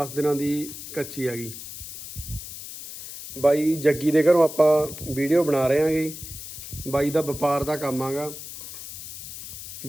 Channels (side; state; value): left; noise; hiss, 11 dB below the sound